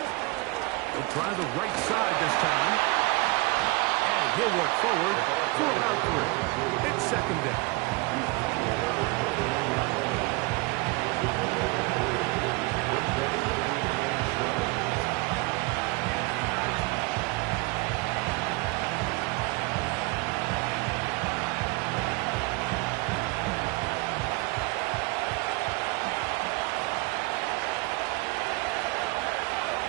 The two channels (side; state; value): left; quieter; 25.3 dB